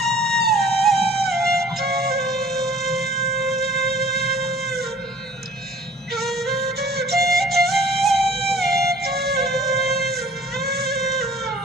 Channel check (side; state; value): both; normal; correlation 0.50